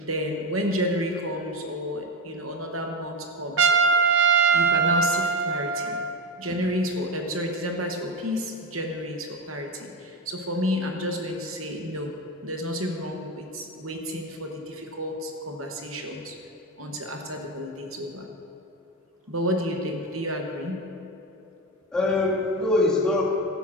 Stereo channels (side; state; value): both; normal; correlation 0.17